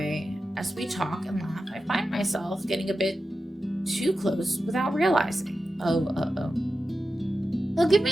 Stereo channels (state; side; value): normal; both; correlation 0.92